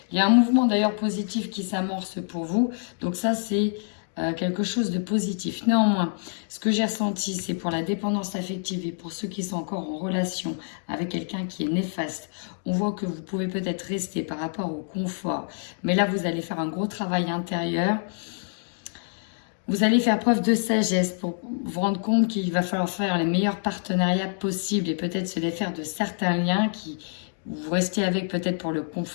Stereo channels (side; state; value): right; silent; digital silence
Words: Il y a un mouvement d'ailleurs positif qui s'amorce pour vous. Donc ça, c'est quelque chose de positif. Néanmoins, ce que j'ai ressenti, c'est pour la dépendance affective et pour ceux qui sont encore en relation avec quelqu'un qui est néfaste. On voit que vous pouvez peut-être rester par rapport au confort, mais là, vous allez faire un gros travail intérieur. Vous allez faire preuve de sagesse pour vous rendre compte qu'il va falloir faire les meilleurs partenariats possibles et peut-être se défaire de certains liens qui vous restez avec peut-être pour le